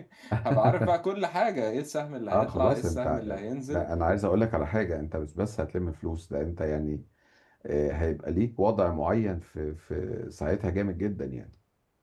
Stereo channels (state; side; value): identical; both; correlation 1.00